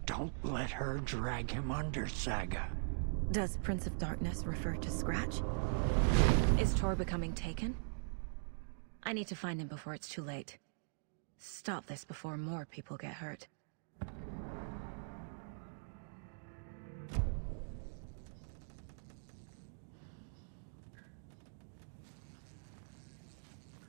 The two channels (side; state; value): left; silent; digital silence